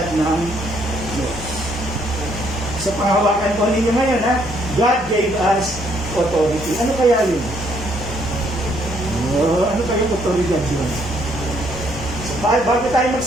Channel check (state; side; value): normal; both; correlation 0.69